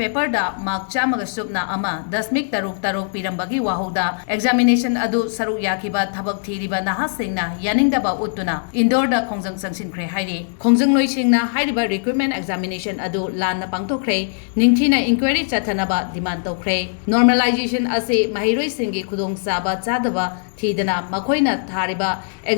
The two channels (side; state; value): right; silent; digital silence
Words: da mark chamaga subna ama dasmik taruk Pirambagi wahoda examination adu saruk yakiba Thabak thiriba nahasingna yaningdaba utuna indoor da khongjang sangsinkhre hairi khongjang loisingna hairiba recruitment examination adu lanna pangthokre ningthina inquiry chathanaba demand tokre normalization ase mahiroi singi khudong saba chadaba thidana makoina thariba